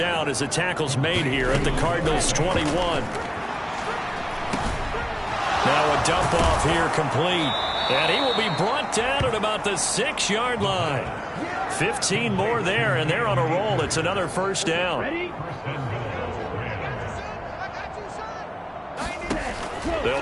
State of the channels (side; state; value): both; identical; correlation 1.00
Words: as the tackle's made here at the Cardinals' 21. Now a dump off here complete. And he will be brought down at about the 6-yard line. 15 more there, and they're on a roll. It's another first down.